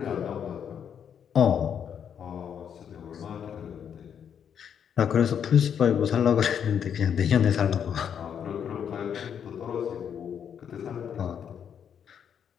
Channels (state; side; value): quieter; right; 8.2 dB